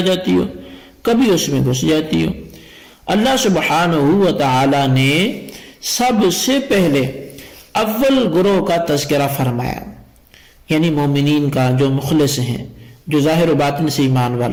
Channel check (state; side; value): identical; both; correlation 1.00